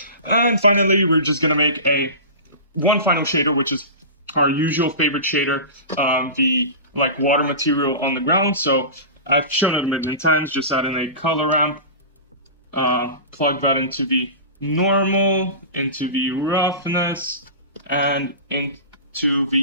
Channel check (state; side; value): inverted; both; correlation -0.30